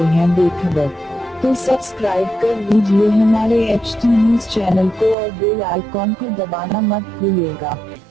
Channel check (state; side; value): drops out; left; at 5.2 s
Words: हैं बेखबर? तो सब्सक्राइब कर लीजिए हमारे HT न्यूज चैनल को और बेल आइकॉन को दबाना मत भूलिएगा।